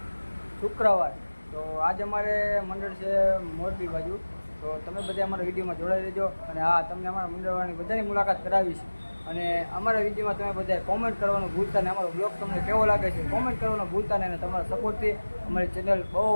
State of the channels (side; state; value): both; inverted; correlation -1.00